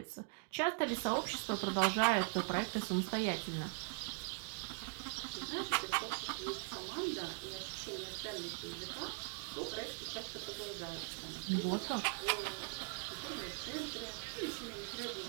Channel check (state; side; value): silent; left; 51 dB below the other